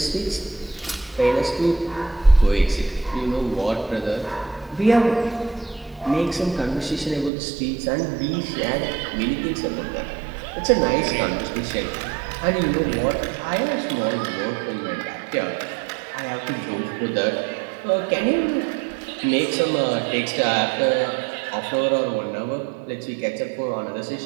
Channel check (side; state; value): left; drops out; at 7.3 s